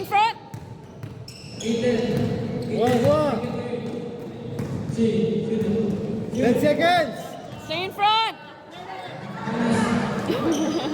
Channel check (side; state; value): both; identical; correlation 1.00